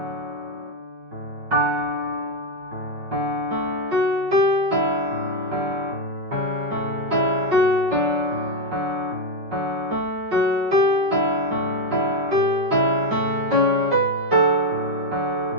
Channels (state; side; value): late; left; 5.5 ms